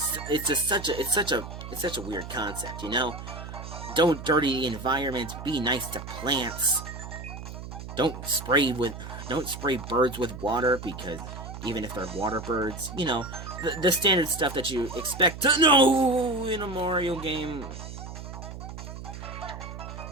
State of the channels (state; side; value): noise; right; hum, 10 dB below the sound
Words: such a weird concept, you know? Don't dirty the environment, be nice to plants. Don't spray birds with water, because even if they're water birds, you know, the standard stuff that you expect to know in a Mario game.